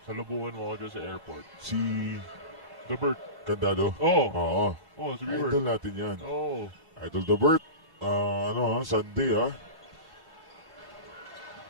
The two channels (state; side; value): late; left; 1.1 ms